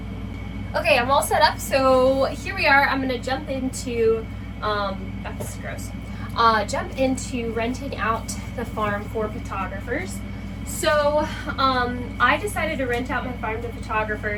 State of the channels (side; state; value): both; identical; correlation 1.00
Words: Okay, I'm all set up, so here we are. I'm gonna jump into that's gross. Jump into renting out the farm for photographers. So I decided to rent out my farm to